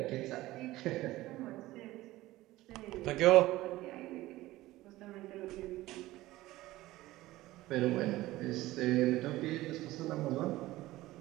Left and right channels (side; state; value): left; quieter; 17.3 dB